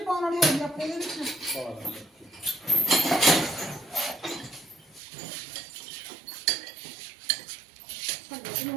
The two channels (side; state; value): left; drops out; at 5.0 s